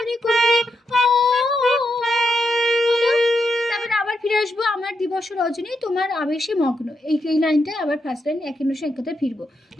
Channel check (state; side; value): normal; both; correlation 0.83